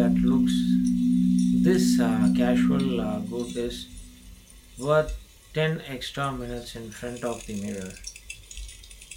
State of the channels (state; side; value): identical; both; correlation 1.00